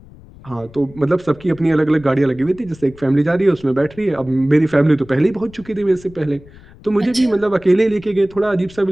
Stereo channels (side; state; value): left; noise; rumble, 22 dB below the sound